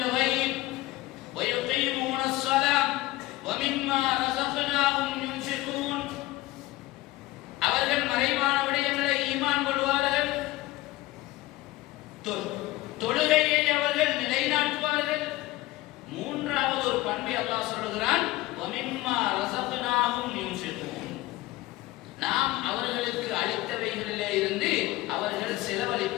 وَيُقِيمُونَ الصَّلَاةَ وَمِمَّا رَزَقْنَاهُمْ يُنْفِقُونَ. அவர்கள் மறைவான விடயங்களை ஈமான் கொள்வார்கள், தொழுகையை அவர்கள் நிலைநாட்டுவார்கள். மூன்றாவது ஒரு பண்பை அல்லாஹ் சொல்கிறான், وَمِمَّا رَزَقْنَاهُمْ يُنْفِقُونَ. நாம் அவர்களுக்கு அளித்தவைகளிலே இருந்து அவர்கள்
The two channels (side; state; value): right; quieter; 17.8 dB